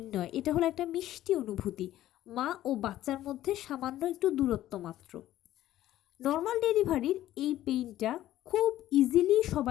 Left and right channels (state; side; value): quieter; right; 13.7 dB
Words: নয়, এটা হলো একটা মিষ্টি অনুভূতি, মা ও বাচ্চার মধ্যে সামান্য একটু দূরত্ব মাত্র। নর্মাল ডেলিভারির এই পেইনটা খুব ইজিলি